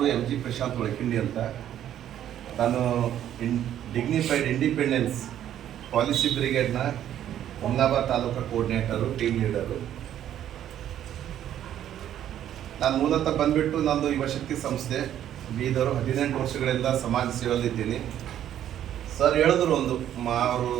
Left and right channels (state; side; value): quieter; left; 11.0 dB